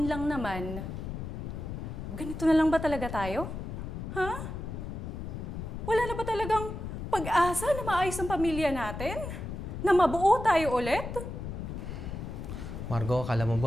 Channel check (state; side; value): noise; left; rumble, 6 dB below the sound